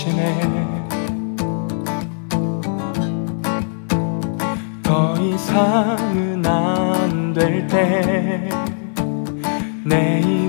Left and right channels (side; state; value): right; silent; 66 dB below the other